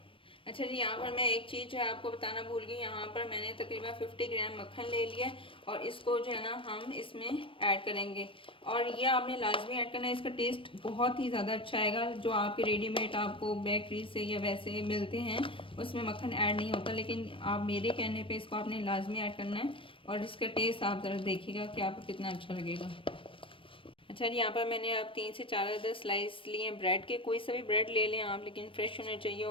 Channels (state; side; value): late; right; 0.25 ms